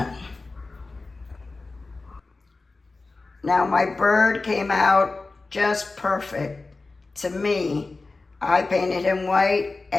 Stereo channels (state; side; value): quieter; right; 3.6 dB